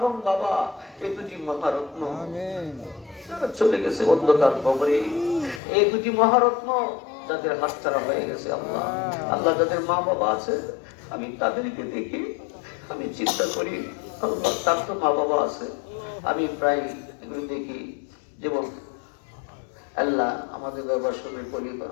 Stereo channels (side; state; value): right; drops out; at 5.6 s